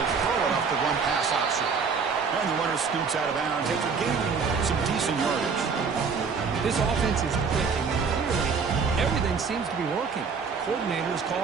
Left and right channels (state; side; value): quieter; left; 5.5 dB